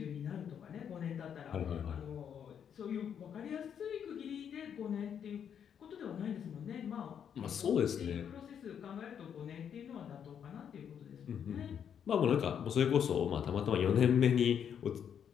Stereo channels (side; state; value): right; quieter; 8.3 dB